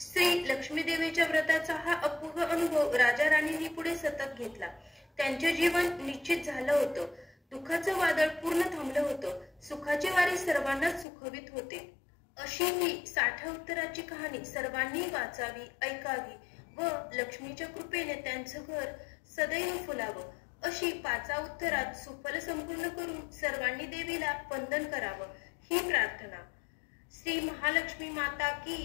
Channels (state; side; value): drops out; right; at 11.1 s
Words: लक्ष्मीदेवीच्या व्रताचा हा अपूर्व अनुभव राजा राणींनी पुढे सतत घेतला. त्यांचे जीवन निश्चित झालं होतं. दुःखाचं वादळ पूर्ण थांबलं होतं. सुखाचे वारे सर्वांनाच सुखवित होते. अशी ही 60 उत्तराची कहाणी सर्वांनी वाचावी, ऐकावी व लक्ष्मीच्या कृपेने त्यांचं घर सदैव फुलावं अशी 5 उत्तरात सुफल संपूर्ण करून सर्वांनी देवीला वंदन करावं ही प्रार्थना. श्री महालक्ष्मी माता